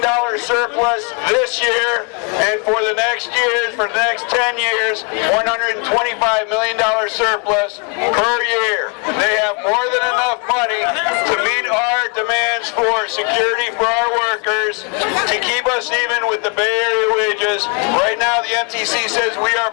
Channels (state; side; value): quieter; right; 35.7 dB